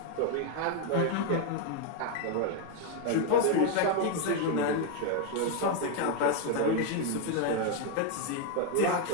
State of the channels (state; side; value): different; both; correlation 0.01